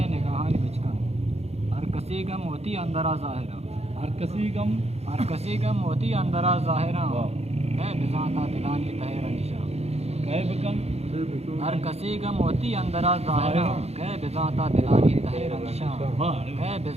نگاہانی بچکن ہر کسی گم ہوتی اندرا ظاہرہ ہر کسی گم ہوتی اندرا ظاہرہ اے بزانتا دلانی تہر نشا ہر کسی گم ہوتی اندرا ظاہرہ کہ بزانتا دلانی تہر نشا کہ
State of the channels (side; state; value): left; late; 0.31 ms